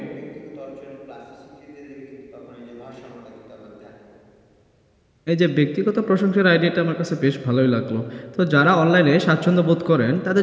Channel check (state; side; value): identical; both; correlation 1.00